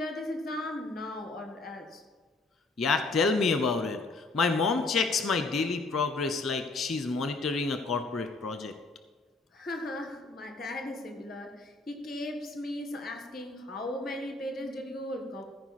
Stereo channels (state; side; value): quieter; right; 3.5 dB